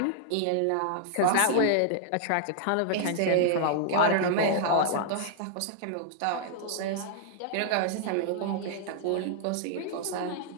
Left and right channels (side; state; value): both; different; correlation -0.01